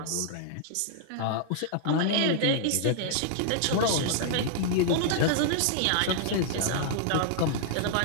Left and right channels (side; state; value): both; different; correlation -0.01